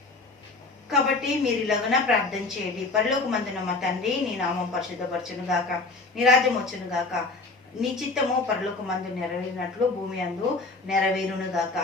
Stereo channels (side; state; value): right; quieter; 3.5 dB